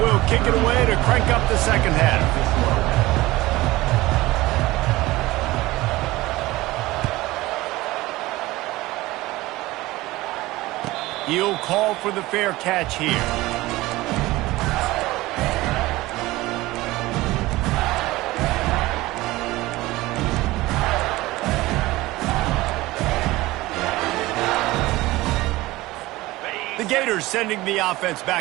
kick it away to crank up the 2nd half. He'll call for the fair catch here. Gators sending the offense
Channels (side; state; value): left; quieter; 18.9 dB